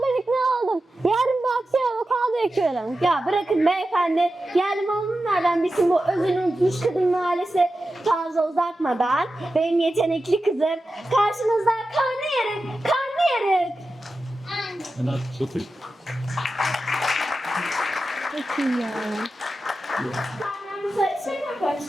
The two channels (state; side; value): normal; both; correlation 0.92